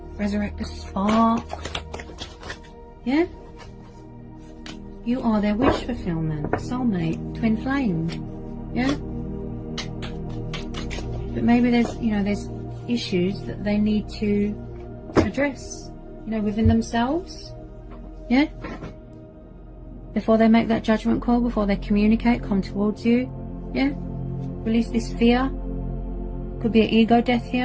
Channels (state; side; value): identical; both; correlation 1.00